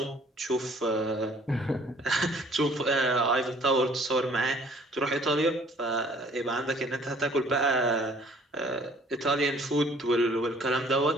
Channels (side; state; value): both; normal; correlation 0.56